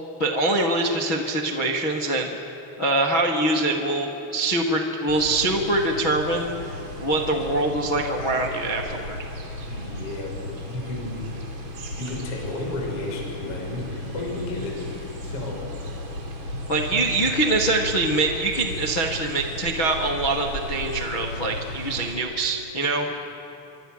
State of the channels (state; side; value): late; right; 6.2 ms